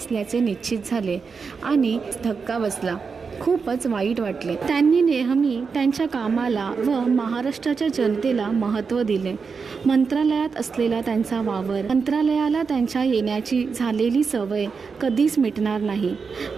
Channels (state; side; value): quieter; left; 5.3 dB